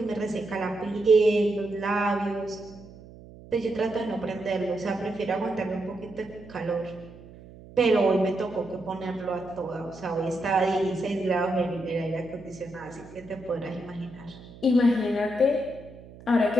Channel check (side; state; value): right; noise; hum, 19 dB below the sound